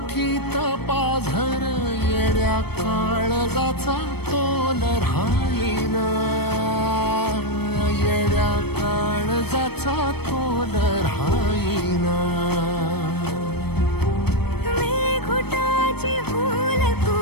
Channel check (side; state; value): right; late; 0.97 ms